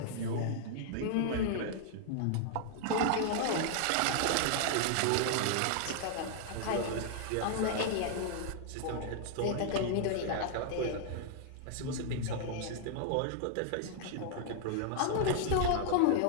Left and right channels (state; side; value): different; both; correlation -0.01